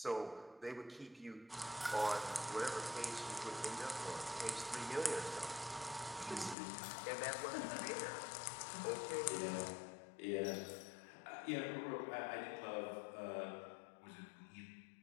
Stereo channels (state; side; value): drops out; right; at 6.6 s